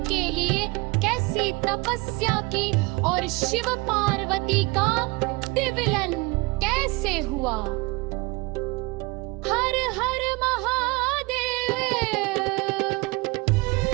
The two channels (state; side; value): quieter; left; 24.8 dB